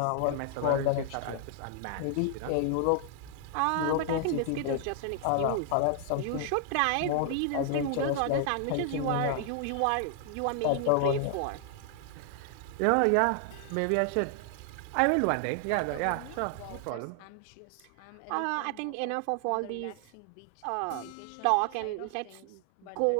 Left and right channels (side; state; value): both; different; correlation 0.00